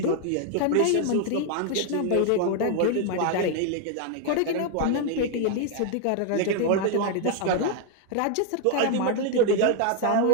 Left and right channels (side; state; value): both; different; correlation 0.00